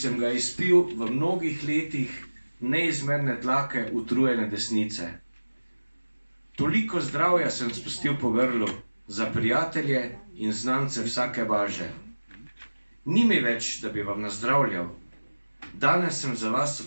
ga izpil v mnogih letih neizmerne tlake utrujene desnice. Toliko zdravja sem spustil po grlu za prijatelje in znance vsake važe. Ni mi več, da bi vam nazdravljal. Danes sem za vas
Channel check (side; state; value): both; inverted; correlation -1.00